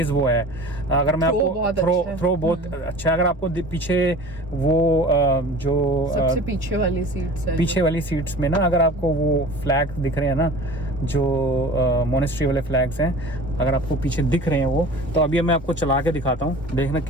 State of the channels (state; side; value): normal; both; correlation 0.41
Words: वो है। अगर मैं आपको थ्रो बहुत अच्छा, अगर आपको पीछे वो जो सबसे पीछे वाली सीट्स में ना, अगर आपको वो फ्लैग दिख रहे हैं ना, जो मोनेस्ट्री वाले फ्लैग्स हैं, अगर आपको पीछे दिख रहे हैं वो, तो अभी मैं आपको चला के दिखाता हूँ, देखना